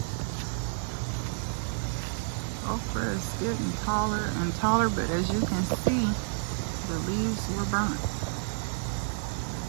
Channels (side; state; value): left; silent; digital silence